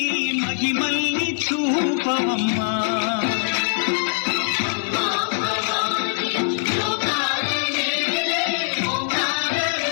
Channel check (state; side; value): silent; right; 59 dB below the other